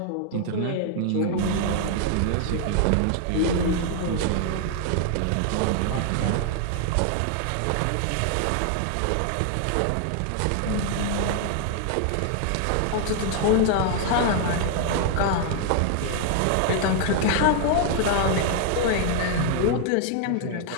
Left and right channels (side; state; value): both; different; correlation 0.00